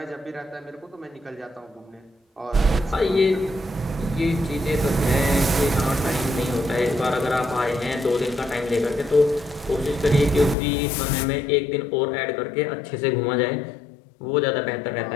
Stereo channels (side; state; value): right; drops out; at 10.6 s